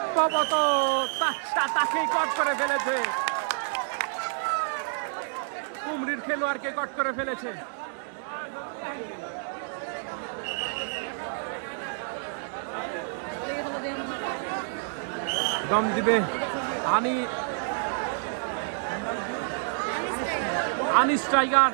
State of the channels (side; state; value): left; silent; digital silence